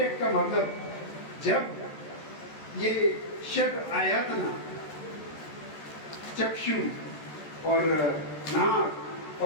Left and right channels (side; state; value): right; late; 14 ms